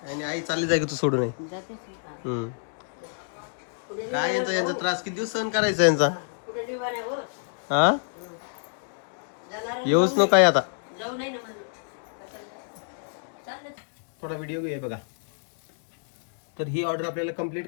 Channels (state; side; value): silent; right; digital silence